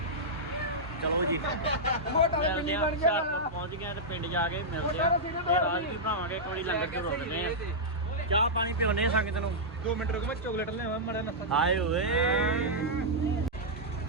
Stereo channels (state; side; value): normal; both; correlation -0.09